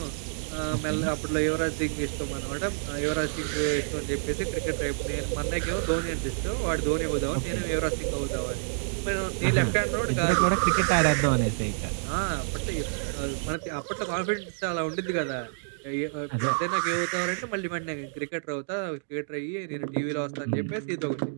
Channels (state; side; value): silent; left; digital silence